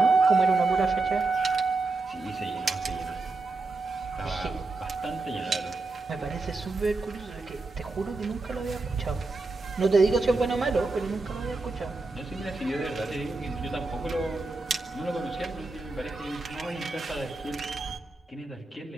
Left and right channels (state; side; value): quieter; left; 3.5 dB